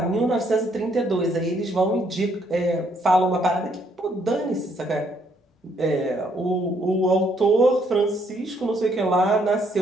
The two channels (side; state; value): both; normal; correlation 0.69